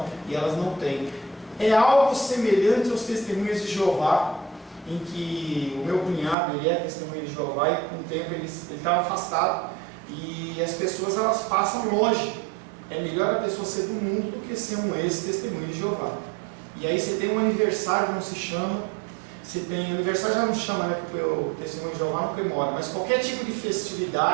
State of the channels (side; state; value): left; drops out; at 6.4 s